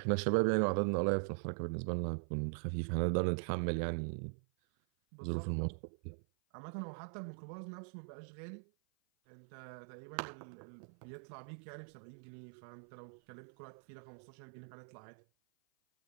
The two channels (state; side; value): silent; left; 50 dB below the other